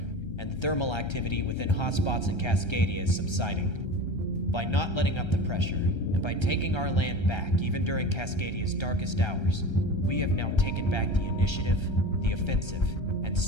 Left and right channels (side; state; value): right; late; 1.3 ms